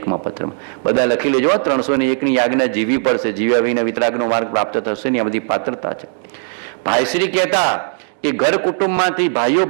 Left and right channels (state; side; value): silent; left; 68 dB below the other